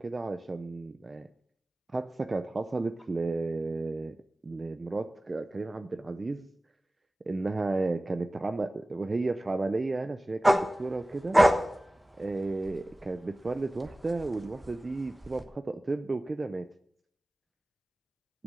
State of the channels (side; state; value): both; normal; correlation 0.97